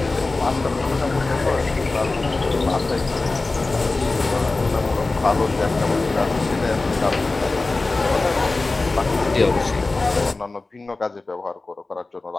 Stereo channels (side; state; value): right; quieter; 3.4 dB